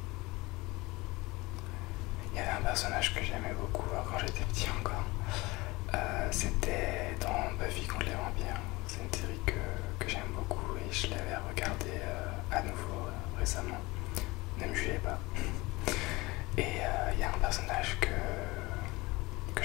Il y avait un personnage que j'aimais beaucoup quand j'étais petit encore. C'était dans Buffy contre les vampires. C'est une série que j'aime beaucoup et je l'avais regardée à nouveau récemment. Ne me jugez pas. Et il y a un personnage que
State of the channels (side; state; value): right; quieter; 22.3 dB